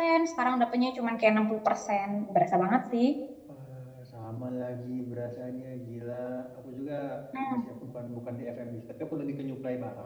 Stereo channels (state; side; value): identical; both; correlation 1.00